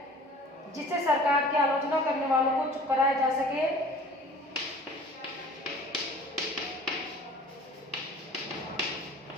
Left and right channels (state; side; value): normal; both; correlation 0.46